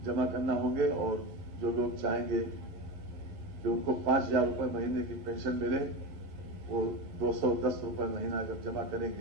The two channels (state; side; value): late; left; 11 ms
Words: जमा करना होंगे, और जो लोग चाहेंगे कि उनको 5000 रुपए महीने की पेंशन मिले वो 210 रुपए महीना अगर जमा